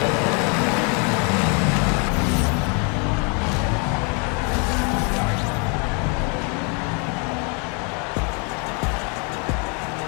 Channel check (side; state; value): right; quieter; 34.8 dB